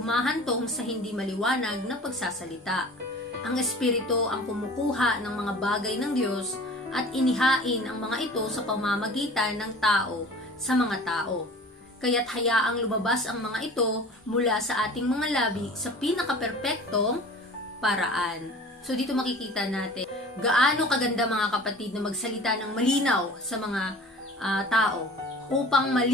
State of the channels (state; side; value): normal; both; correlation 0.42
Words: sa hindi maliwanag na pagsasalita. Ang Espiritu ang kumukuha ng mga bagay ng Diyos at inihain ang mga ito sa pamamagitan ng tao sa mga tao. Kaya't hayaang lumabas ang mga ito mula sa ating mga labi sa pinakaperpektong paraan. So dito makikita natin gaano kaganda mga kapatid na magsalita ng malinaw sa mga tao upang